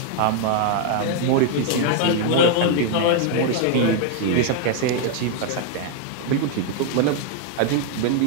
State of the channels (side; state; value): both; different; correlation 0.00